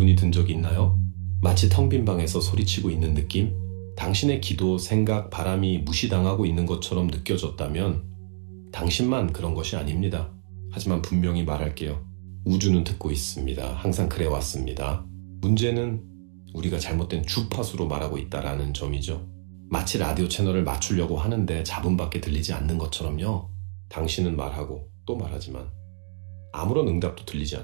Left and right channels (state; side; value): silent; left; digital silence